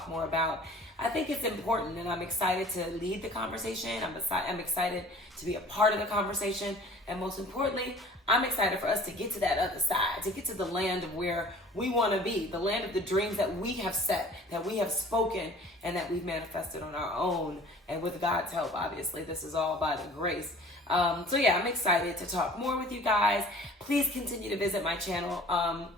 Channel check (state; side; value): normal; both; correlation 0.47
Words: more about? I think it's important, and I'm excited to lead the conversation. I'm excited to be a part of the conversation. And most importantly, I'm excited for us to get to that other side, to get to the land of where we want to be, the land of the dreams that we have set, that we have spoken, and that we've manifested on our own. And with God's help, obviously, this is all by the grace. I'm excited to talk more with you guys. Please continue to visit my channel,